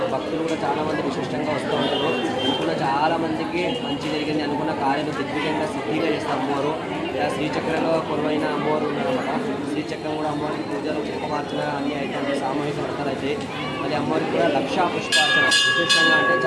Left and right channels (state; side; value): identical; both; correlation 1.00